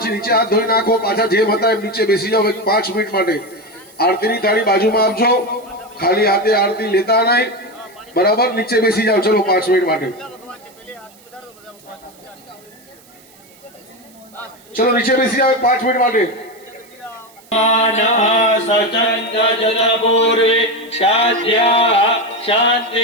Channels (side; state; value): right; noise; hiss, 27 dB below the sound